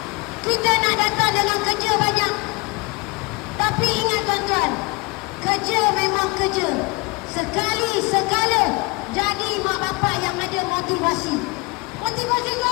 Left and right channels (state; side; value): quieter; right; 26.8 dB